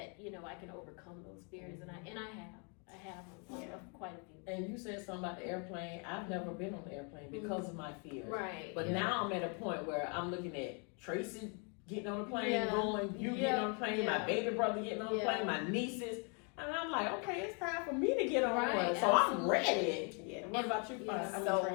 I can overcome those fears, and I have quite a few. And you said something about the airplane. I've never been on the airplane because of my fears. Right. But now I'm at a point where I'm looking at Tracy getting on the plane, going, you getting on the plane, my baby brother getting on the plane, my nieces. And I'm like, okay, it's time for me to get on one. So I'm ready. Yeah. What about you?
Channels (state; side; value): quieter; right; 37.0 dB